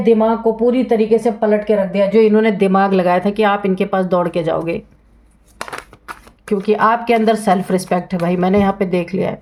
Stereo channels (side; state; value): both; identical; correlation 1.00